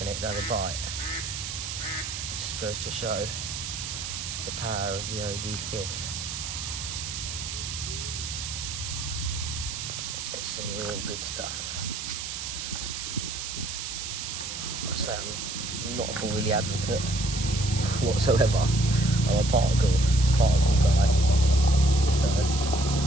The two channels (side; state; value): right; noise; hiss, 6 dB below the sound